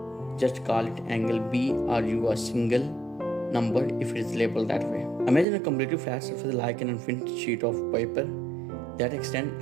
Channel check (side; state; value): left; drops out; at 5.5 s